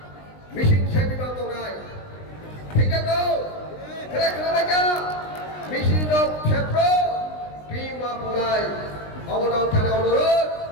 Mesin সেবি বাতো নাই ঠিক আছে তো ঠিক আছে Mesin ক্ষেত্র Bima Punai অবদান থানা অনুরোধ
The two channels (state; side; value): late; right; 20 ms